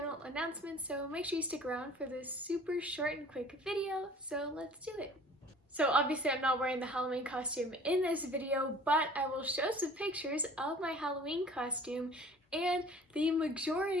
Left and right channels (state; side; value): normal; both; correlation 0.48